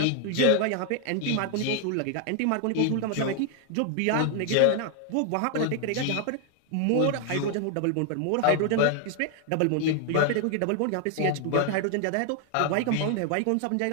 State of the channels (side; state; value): both; different; correlation 0.00